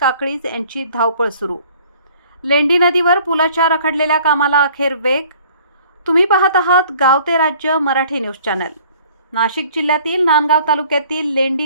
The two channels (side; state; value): both; inverted; correlation -0.54